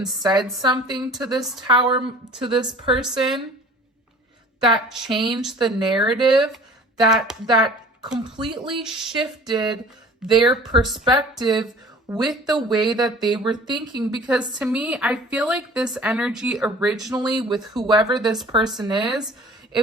said something to this person that changed the narrative, that completely shifted their perspective with the way that they were thinking. Because to me, I feel like this energy originally with whoever this person is,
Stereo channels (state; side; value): normal; both; correlation 0.46